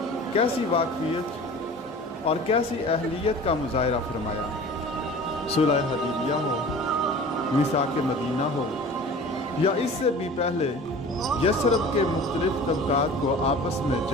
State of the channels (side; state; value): both; normal; correlation 0.41